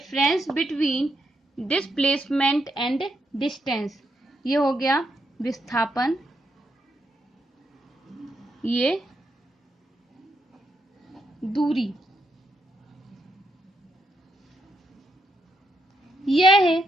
between displacement and distance. ये हो गया विस्थापन, ये दूरी। यह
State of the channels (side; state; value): both; normal; correlation 0.80